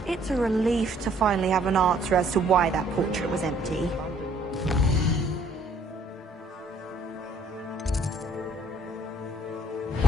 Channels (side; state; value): both; normal; correlation 0.62